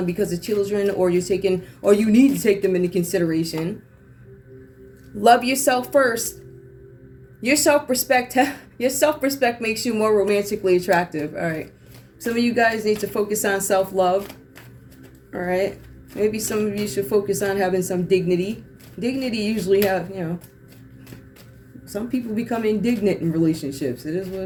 because of children, or you need to take them into consideration. Love yourself first. Your self-respect makes you more romantically attractive. All right. Some of you guys need to focus on self-love. All right. Maybe some of you should focus on having some dignity. Dignity usually some people become indignant in relationships. It is what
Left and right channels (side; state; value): both; identical; correlation 1.00